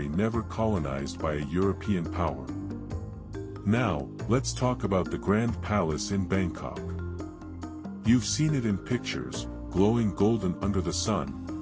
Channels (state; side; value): identical; both; correlation 1.00